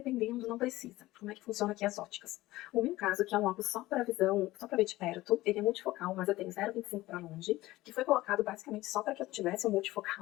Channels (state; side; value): quieter; right; 17.6 dB